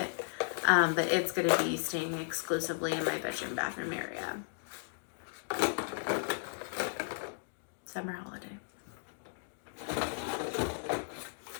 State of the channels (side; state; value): right; silent; digital silence